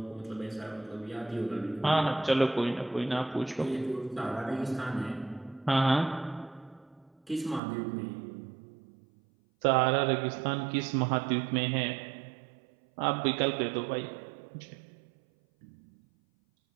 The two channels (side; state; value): left; drops out; at 7.6 s